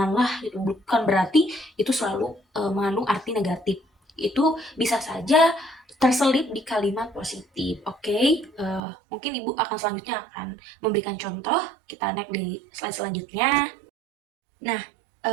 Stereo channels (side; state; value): left; drops out; at 8.8 s